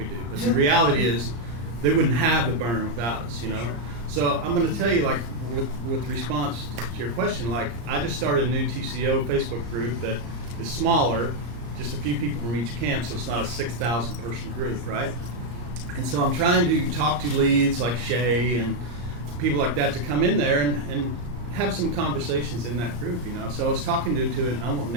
do. But the reality is they wouldn't have the burn without us, So I'm going to tell you, like, with response to your question, like, I just started a new TCO Facebook group that is smaller, just a few people from each camp, so it's not a 6,000 person group, right? And so I'm trying to talk to leads like Shay and people like that to come in there and have some conversations in that group, So I was talking to and I won't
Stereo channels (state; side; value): late; left; 34 ms